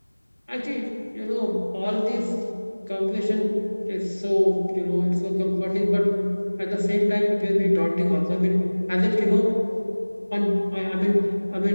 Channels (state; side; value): inverted; both; correlation -1.00